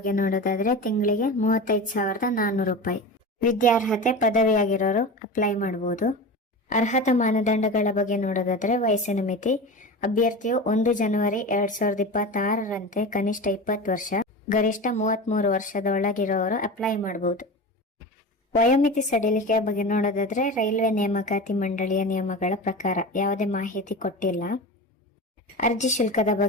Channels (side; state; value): both; normal; correlation 0.28